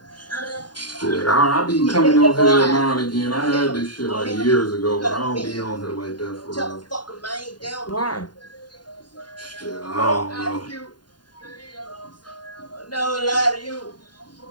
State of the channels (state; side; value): late; right; 0.70 ms